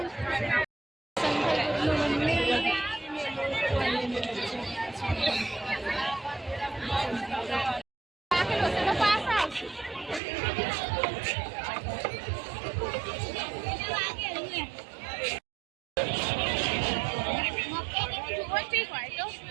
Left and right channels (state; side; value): drops out; left; at 10.2 s